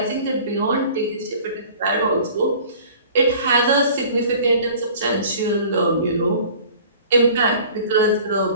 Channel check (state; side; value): inverted; both; correlation -0.47